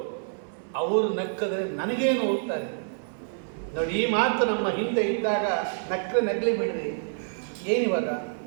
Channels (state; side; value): silent; left; digital silence